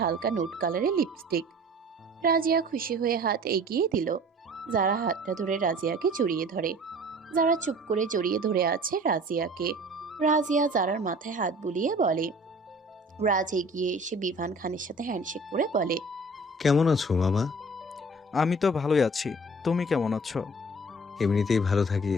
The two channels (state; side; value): normal; both; correlation 0.47